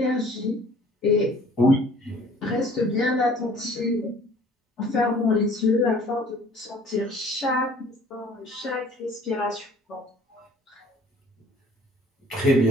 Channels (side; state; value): both; normal; correlation 0.53